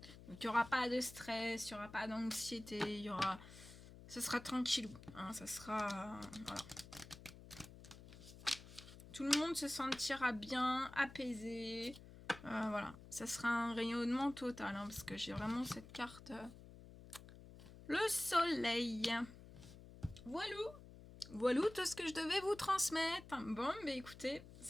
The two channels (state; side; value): noise; left; hum, 17 dB below the sound